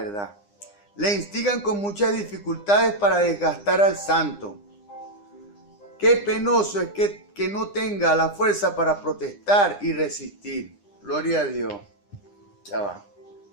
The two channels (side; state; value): right; late; 9.9 ms